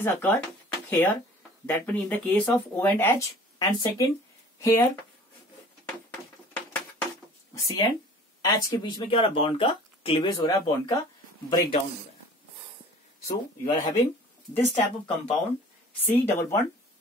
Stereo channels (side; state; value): both; normal; correlation 0.47